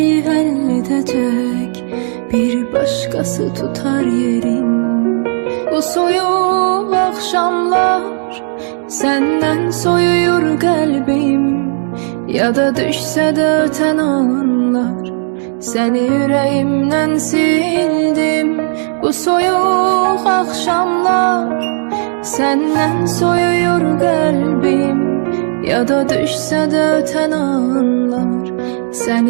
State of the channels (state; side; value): silent; left; 63 dB below the other